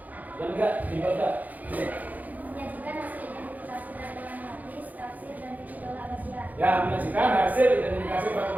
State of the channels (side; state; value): left; late; 0.080 ms